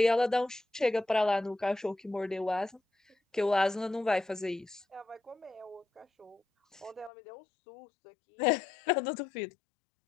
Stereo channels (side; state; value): right; drops out; at 7.1 s